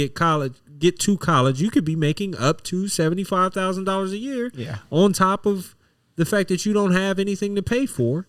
to college, you could be making up to $75,000 a year. Yeah. On top of the fact that you don't have anything to pay for.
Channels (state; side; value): identical; both; correlation 1.00